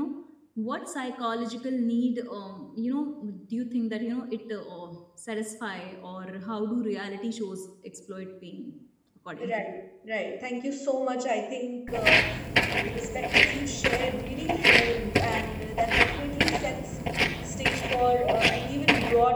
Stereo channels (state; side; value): identical; both; correlation 1.00